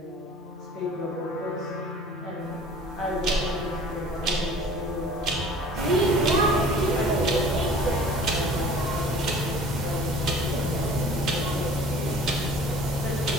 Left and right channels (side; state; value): both; normal; correlation 0.47